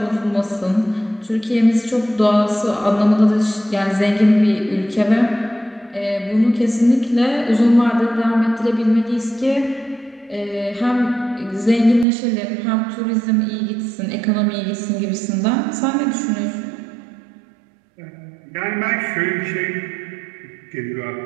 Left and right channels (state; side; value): drops out; left; at 12.1 s